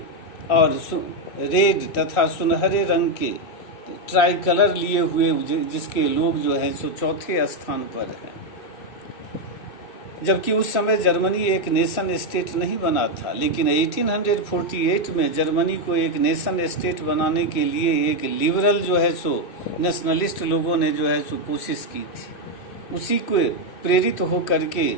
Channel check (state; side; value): late; right; 2.6 ms